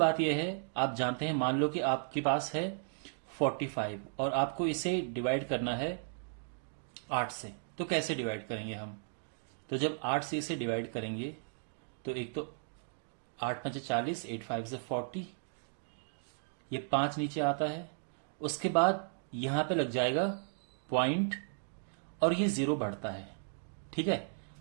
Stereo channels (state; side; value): silent; left; digital silence